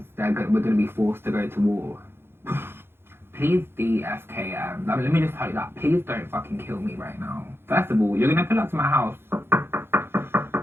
we're going to be forced to go to war. Please DFKM. Let me just tell you that. Please don't fucking kill me right now. First of all, you're going to pull up to my house.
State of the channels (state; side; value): late; left; 0.11 ms